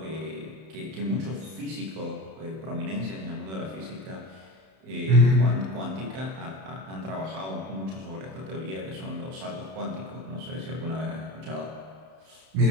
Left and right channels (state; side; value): late; left; 31 ms